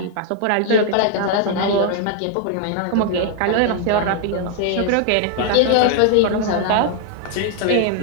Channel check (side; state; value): both; different; correlation 0.00